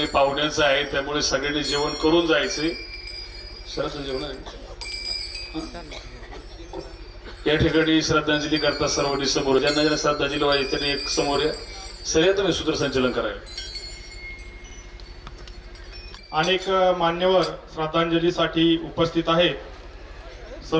पाहुण्यांचं आहे, त्यामुळे सगळ्यांनी जेवण करून जायचे. सरस जेवण आहे या ठिकाणी. श्रद्धांजली करता सर्वांनी समोर, ज्यांना श्रद्धांजली व्हायची त्यांनी एक समोर या. सगळ्या तुम्ही सूत्रसंचलन करायला. अनेक मान्यवर श्रद्धांजलीसाठी उपस्थित आहे.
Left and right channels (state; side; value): identical; both; correlation 1.00